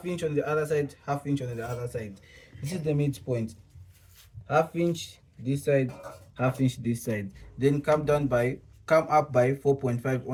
inch on the other side, half inch on the other side. This is the midpoint. Half inch this side, half inch this side. Then come up by 4.5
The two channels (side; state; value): both; identical; correlation 1.00